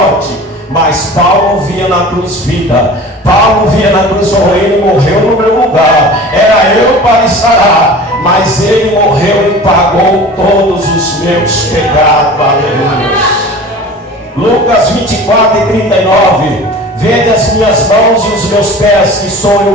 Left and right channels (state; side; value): normal; both; correlation 0.39